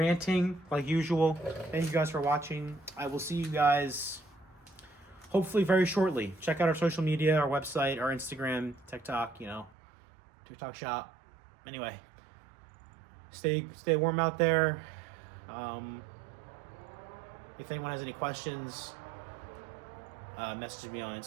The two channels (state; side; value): drops out; left; at 9.7 s